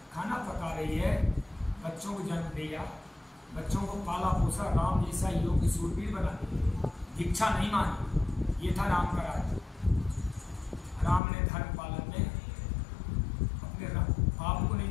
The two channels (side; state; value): right; drops out; at 11.2 s